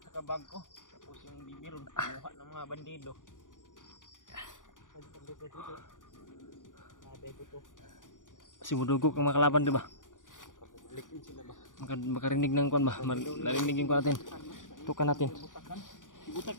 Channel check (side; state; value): right; late; 0.88 ms